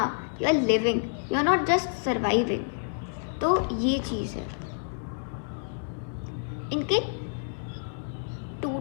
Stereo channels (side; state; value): right; silent; 59 dB below the other